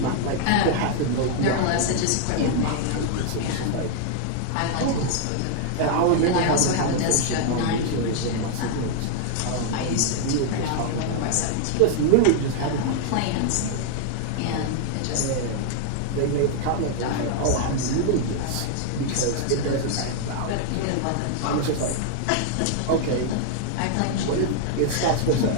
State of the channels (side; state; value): both; different; correlation 0.00